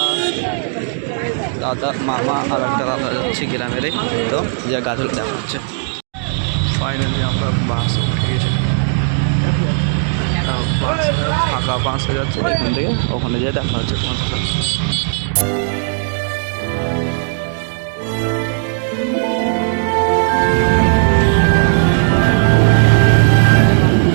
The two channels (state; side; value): silent; left; digital silence